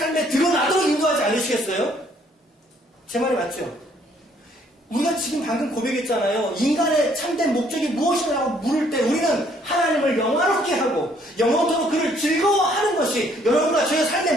드러나도록 인도하지 않으시겠어요? 제 말이 맞죠? 우리가 지금 방금 고백했잖아요. 인간의 참된 목적이 무엇이라고 물을 때 우리는 하나님을 영화롭게 하고 영원토록 그를 즐거워하는 것이 여러분과 저의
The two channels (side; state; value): both; normal; correlation 0.64